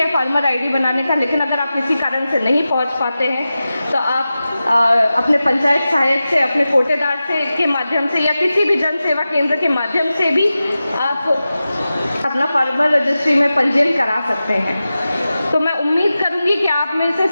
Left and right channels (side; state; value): both; inverted; correlation -0.94